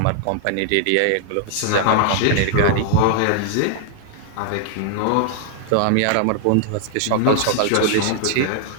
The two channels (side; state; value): both; different; correlation 0.00